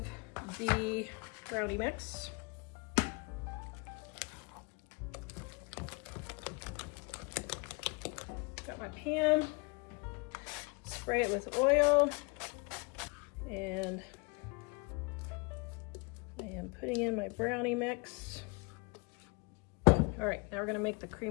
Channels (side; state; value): right; quieter; 30.1 dB